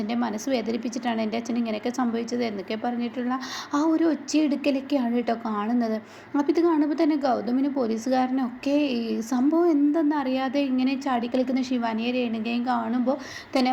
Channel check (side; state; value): both; identical; correlation 1.00